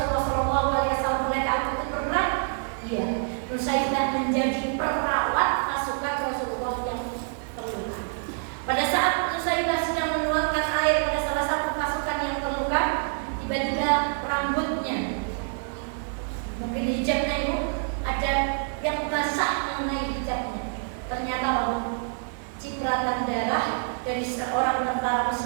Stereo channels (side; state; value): left; silent; 59 dB below the other